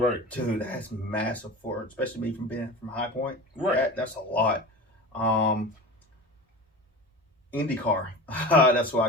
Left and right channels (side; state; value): both; normal; correlation 0.32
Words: Dude, that's massive for especially me from being from High Point. Right. That's a lot. IndyCar. That's where I